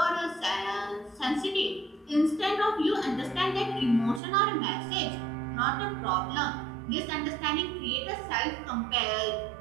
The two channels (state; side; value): drops out; left; at 4.2 s